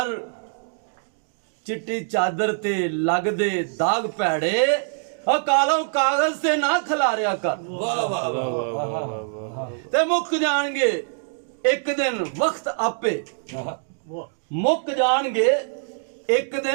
ਚਿੱਟੀ ਚਾਦਰ ਤੇ ਲੱਗਦੇ ਦਾਗ ਭੈੜੇ, ਕਾਲੋਂ ਕਾਗਜ਼ ਤੇ ਨਾ ਖਿਲਾਰਿਆ ਕਰ। ਵਾਹ ਵਾਹ ਵਾਹ, ਤੇ ਮੁੱਕ ਜਾਣਗੇ ਇੱਕ ਦਿਨ ਵਕਤ ਆਪੇ, ਮੁੱਕ ਜਾਣਗੇ ਇੱਕ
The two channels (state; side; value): silent; left; digital silence